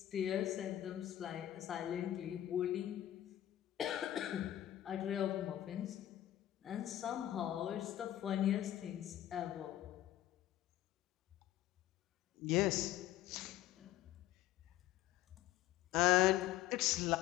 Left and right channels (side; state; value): right; quieter; 13.3 dB